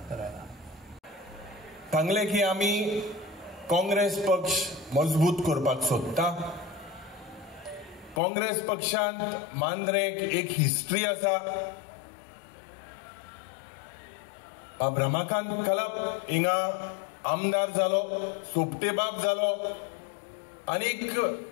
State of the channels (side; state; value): right; drops out; at 8.2 s